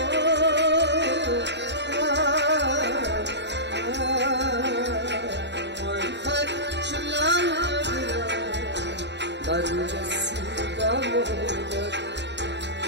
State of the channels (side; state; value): left; late; 0.51 ms